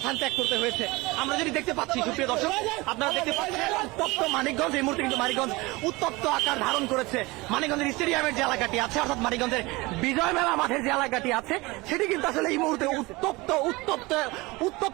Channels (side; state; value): left; quieter; 22.8 dB